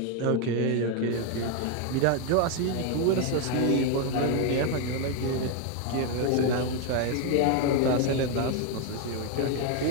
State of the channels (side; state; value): both; different; correlation 0.01